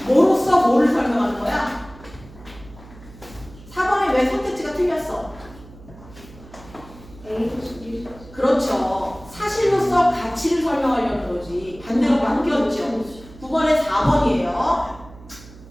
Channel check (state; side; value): noise; right; hum, 20 dB below the sound